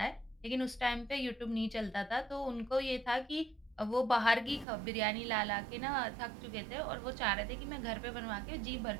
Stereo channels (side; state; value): left; drops out; at 4.7 s